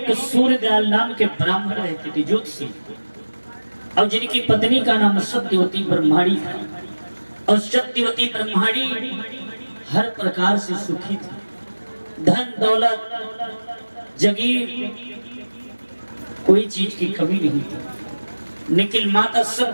सूर्यदयाल नाम के ब्राह्मण रहते थे, ज्योतिषी, और जिनकी पत्नी का नाम सत्यवती ब्रह्माणी था। और सत्यवती ब्रह्माणी हर प्रकार से सुखी थी, धन दौलत जगीर कोई चीज की कमी नहीं थी। लेकिन माता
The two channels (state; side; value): inverted; both; correlation -1.00